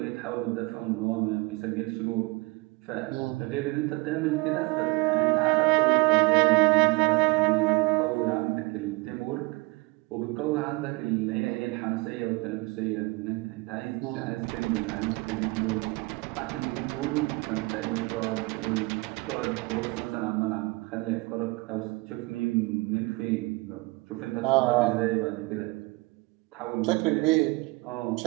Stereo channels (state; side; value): quieter; left; 24.6 dB